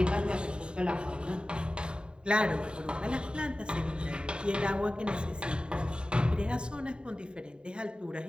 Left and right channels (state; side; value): late; left; 0.050 ms